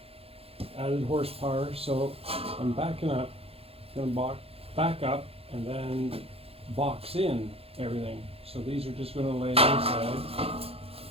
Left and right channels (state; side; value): late; left; 0.28 ms